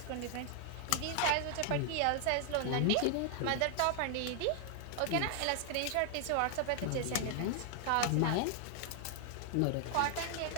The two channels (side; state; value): both; different; correlation 0.00